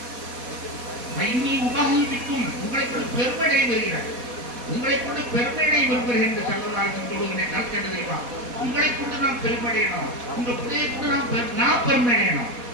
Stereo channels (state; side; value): late; left; 4.1 ms